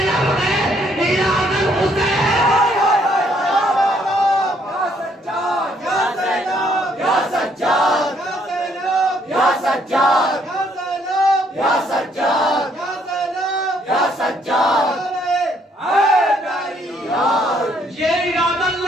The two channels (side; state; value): both; normal; correlation 0.68